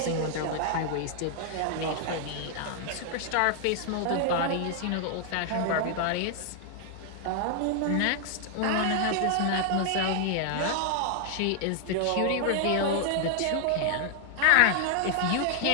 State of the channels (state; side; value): different; both; correlation 0.00